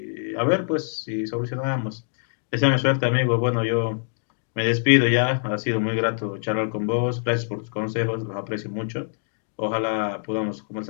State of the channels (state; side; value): silent; right; digital silence